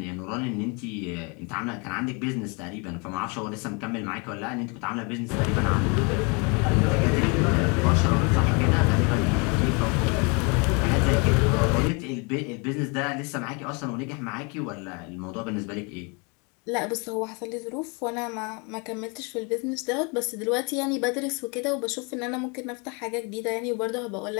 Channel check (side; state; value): right; quieter; 31.8 dB